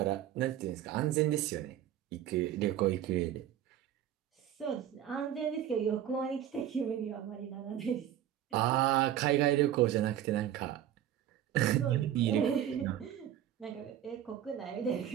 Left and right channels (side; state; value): left; quieter; 11.2 dB